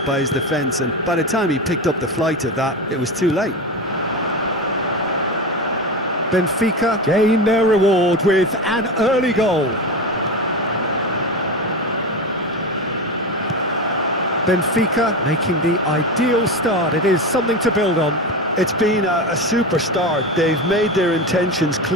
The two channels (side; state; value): both; normal; correlation 0.21